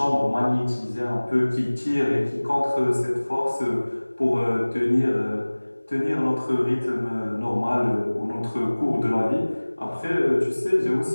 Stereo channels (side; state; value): both; inverted; correlation -1.00